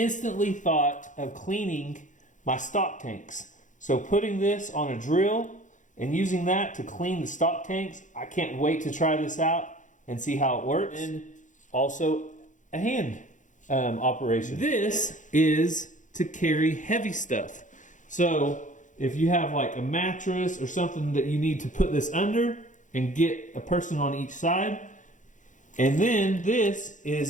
thought of cleaning my stock tanks. So putting this on a drill and using that to clean the stock tanks, I can't wait to try this out and see how it works. And also a hand operation. This is to carry heavy stuff. So if you have like a mattress or something that you need to put this under and get a person on each side. And then this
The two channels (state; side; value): late; right; 0.36 ms